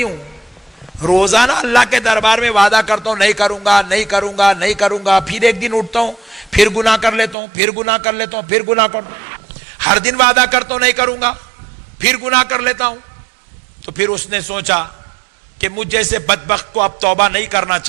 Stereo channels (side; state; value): left; drops out; at 7.4 s